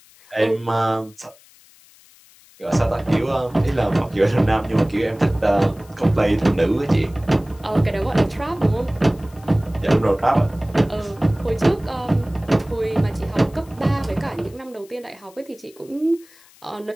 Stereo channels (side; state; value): left; noise; hiss, 27 dB below the sound